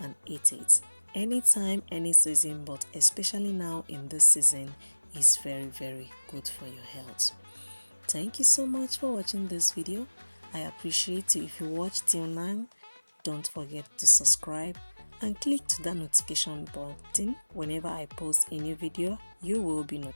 eat it anytime, any season, but especially now in this season is very good for your health. Thank you so much for watching this video. I appreciate you. If you watch till now, don't forget to subscribe and click to that notification button. Whenever I post a new video, you will be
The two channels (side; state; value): both; inverted; correlation -1.00